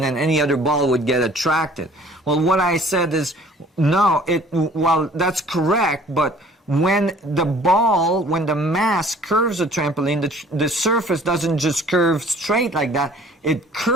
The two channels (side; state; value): both; normal; correlation 0.52